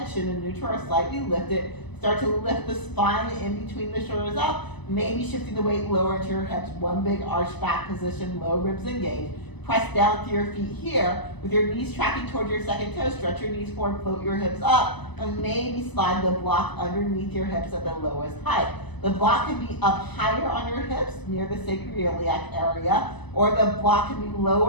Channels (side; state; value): right; late; 0.99 ms